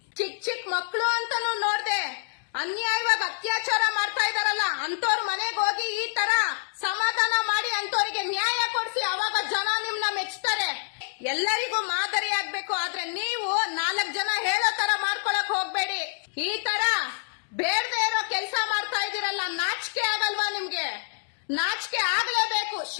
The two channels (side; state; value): right; silent; digital silence